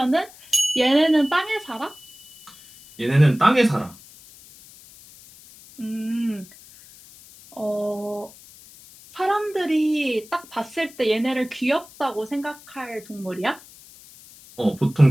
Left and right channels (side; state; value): left; noise; hiss, 22 dB below the sound